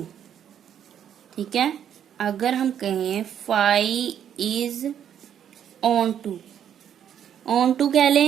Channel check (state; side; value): quieter; left; 9.3 dB